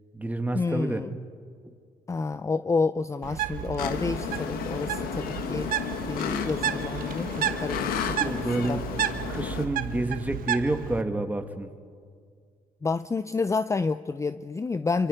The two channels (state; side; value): normal; both; correlation 0.62